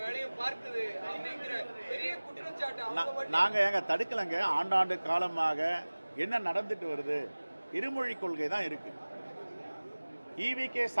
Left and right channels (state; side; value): inverted; both; correlation -1.00